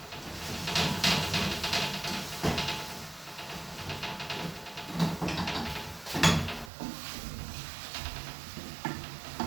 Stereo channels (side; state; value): left; drops out; at 6.7 s